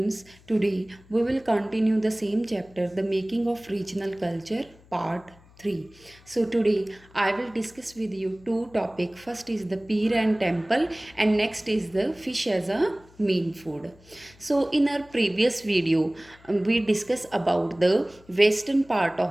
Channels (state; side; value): noise; left; hum, 26 dB below the sound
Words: today we will continue the same chapter, the making of regional culture, part 3. So today I will discuss with you two topics. First is the pier and temple and next is the fish as a main food. So in our previous video, we discussed about the western part